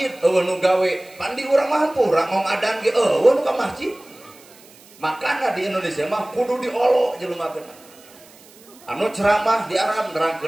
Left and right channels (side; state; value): right; noise; hiss, 24 dB below the sound